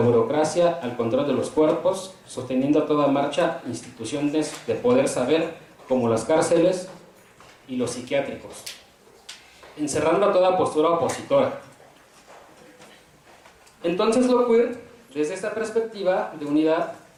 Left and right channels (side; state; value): both; identical; correlation 1.00